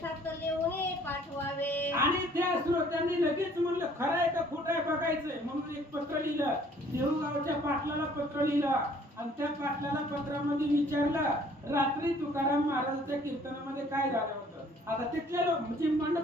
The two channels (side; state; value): both; normal; correlation 0.58